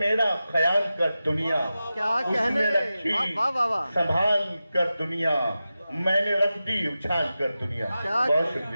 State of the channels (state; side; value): inverted; both; correlation -0.93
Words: ख्याल कर दुनिया। क्या उसने कहने, रखी वाह वाह वाह। संभाल कर दुनिया, मैंने रख दी उछाल कर दुनिया। बहुत